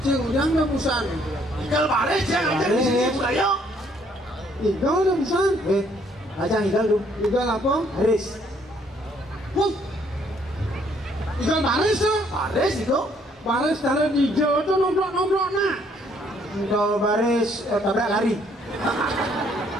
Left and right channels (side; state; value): both; normal; correlation 0.66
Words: Cing ujang udah busan. Tinggal baris ya aja di sini budaya. Igal udah busan. Ajang igal dulu. Igal apa? Haris. Wah. Igal baris ya. Baris itu. Baris taruh di hijau itu nomplok nak. Kalau baris tabrak lari.